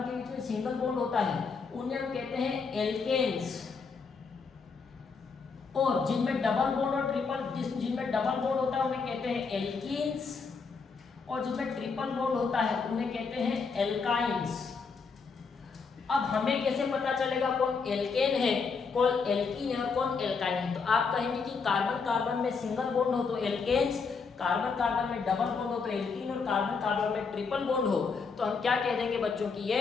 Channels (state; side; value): quieter; right; 5.1 dB